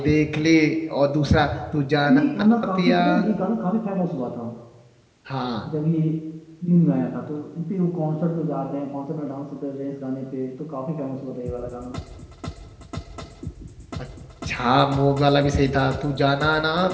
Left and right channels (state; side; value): identical; both; correlation 1.00